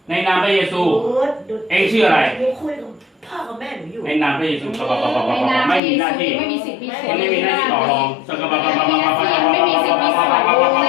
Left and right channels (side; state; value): right; drops out; at 5.8 s